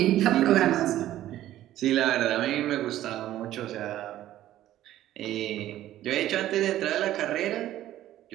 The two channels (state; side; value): quieter; left; 13.4 dB